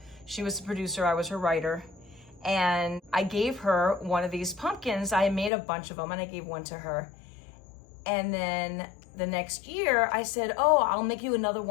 she was the producer, I was her writer, and I gave her one of these pumpkins. I made a bunch of them and I gave one to her. And then the next year I said, oh, I'll make you another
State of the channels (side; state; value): right; drops out; at 5.5 s